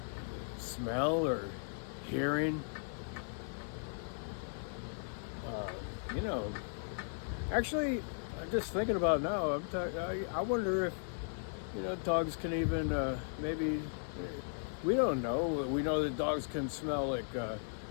Smell or hearing. Actually, I'm just thinking about it now. I wonder if dogs can even maybe. We don't know. We know that dogs can smell like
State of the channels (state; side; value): silent; right; digital silence